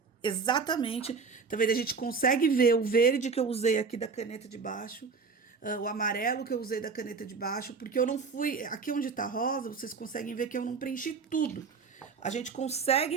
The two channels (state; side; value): quieter; left; 5.1 dB